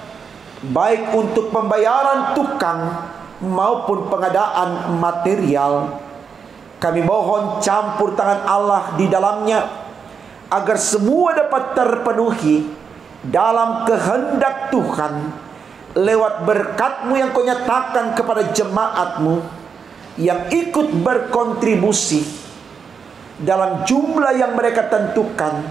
baik untuk pembayaran tukang maupun pengadaan material. Kami mohon campur tangan Allah di dalamnya, agar semua dapat terpenuhi dalam kehendak Tuhan, lewat berkat-Mu yang Kau nyatakan kepada jemaat-Mu yang ikut berkontribusi dalam jumlah yang mereka tentukan,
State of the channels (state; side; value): quieter; left; 6.2 dB